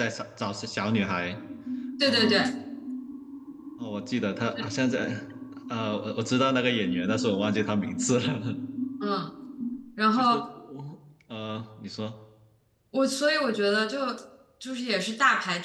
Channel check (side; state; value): both; identical; correlation 1.00